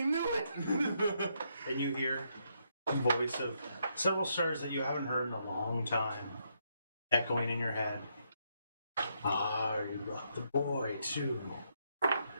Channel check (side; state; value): both; inverted; correlation -0.77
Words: knew it! And you hear the voice of several stars that you haven't heard in a long time echoing in your head. Ah, you brought the boy too.